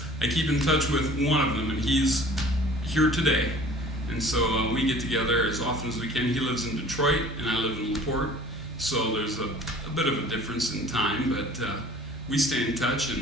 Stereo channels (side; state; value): both; normal; correlation 0.48